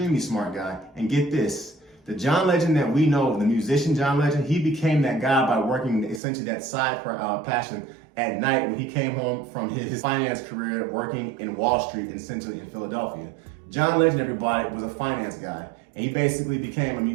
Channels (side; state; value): left; drops out; at 6.2 s